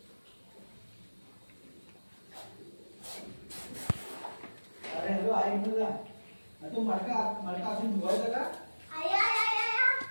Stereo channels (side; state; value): both; inverted; correlation -1.00